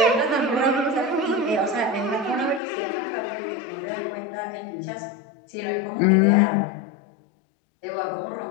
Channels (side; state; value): right; drops out; at 2.6 s